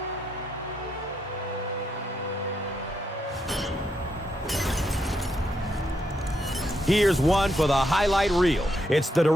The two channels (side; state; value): both; normal; correlation 0.79